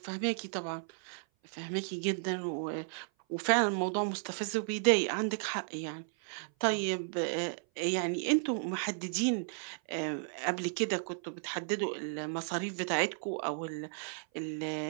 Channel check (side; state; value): left; silent; 55 dB below the other